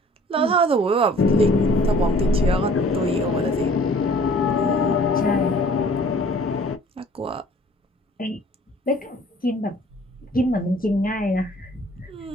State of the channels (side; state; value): both; normal; correlation 0.52